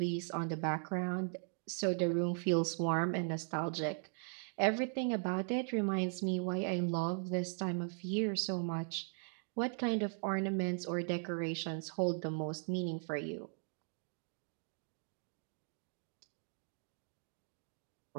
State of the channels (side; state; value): left; silent; 52 dB below the other